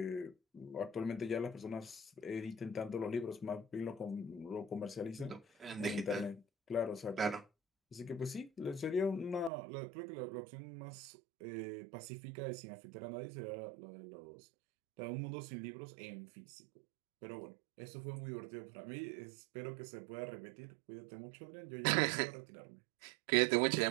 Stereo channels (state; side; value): drops out; left; at 9.5 s